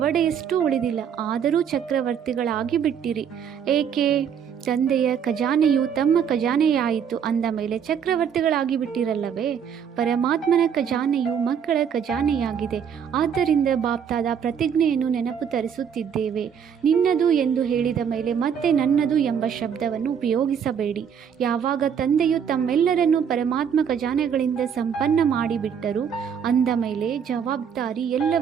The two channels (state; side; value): quieter; left; 7.7 dB